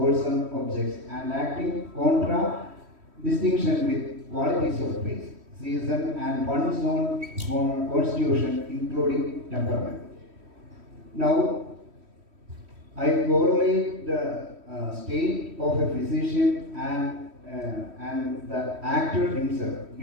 objects and acting contra distinction with qualities of place, season and one's own constitution including temperament. Now I correlate the state of a physician and the actor himself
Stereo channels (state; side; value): late; left; 3.1 ms